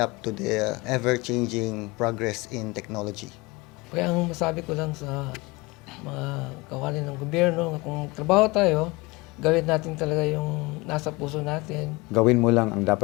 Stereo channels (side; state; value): right; quieter; 23.8 dB